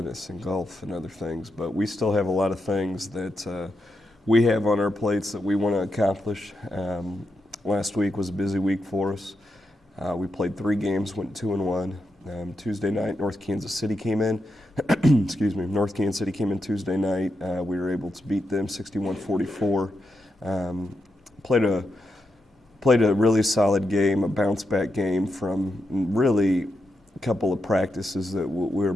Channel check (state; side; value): normal; both; correlation 0.85